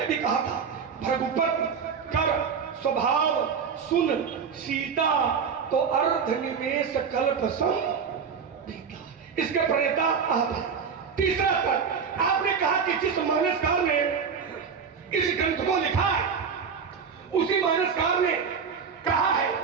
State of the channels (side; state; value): left; quieter; 6.3 dB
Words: भी कहा था, भृगुपति कर स्वभाव सुन सीता तो अर्ध निमेष कल्प सम बीता। इसके प्रेता आप हैं। तीसरा तर्क, आपने कहा कि जिस मानसकार ने इस ग्रंथ को लिखा है उसी मानसकार ने कहा है